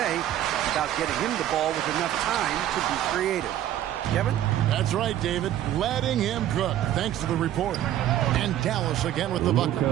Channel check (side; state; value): left; quieter; 12.1 dB